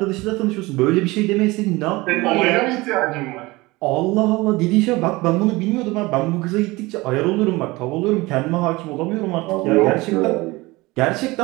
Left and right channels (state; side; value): quieter; left; 21.7 dB